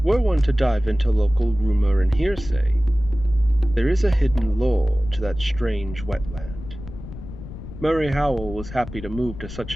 were one to dive into local rumor and hearsay, there is a hidden lore to that strange wetland. Murray Howell was happy to move to such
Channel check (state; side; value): noise; left; rumble, 12 dB below the sound